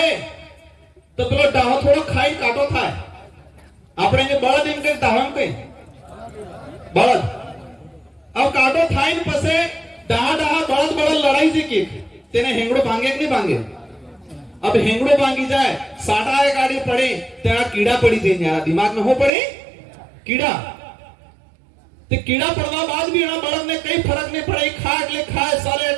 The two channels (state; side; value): drops out; left; at 19.3 s